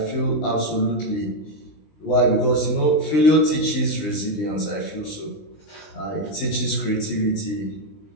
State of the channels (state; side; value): late; right; 20 ms